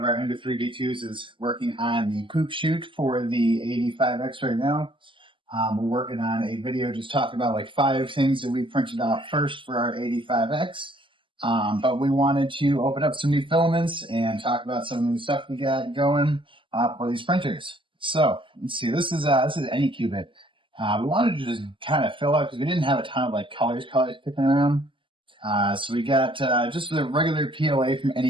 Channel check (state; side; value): late; left; 0.25 ms